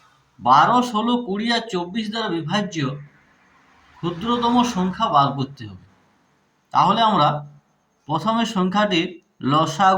12, 16, 20 আর 24 দ্বারা বিভাজ্য ক্ষুদ্রতম সংখ্যা বার করতে হবে। তাহলে আমরা প্রথমে সংখ্যাটির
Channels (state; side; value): identical; both; correlation 1.00